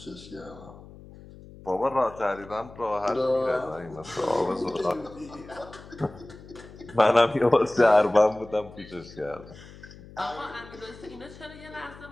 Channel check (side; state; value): left; noise; hum, 18 dB below the sound